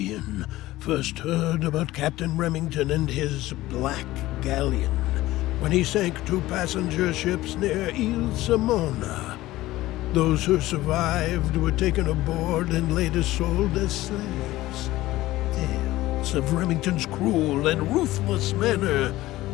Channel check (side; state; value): right; quieter; 16.9 dB